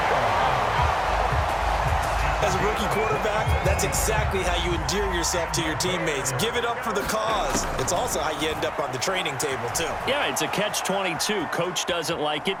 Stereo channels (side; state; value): both; identical; correlation 1.00